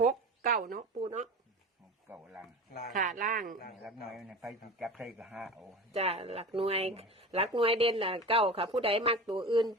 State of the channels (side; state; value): both; normal; correlation 0.33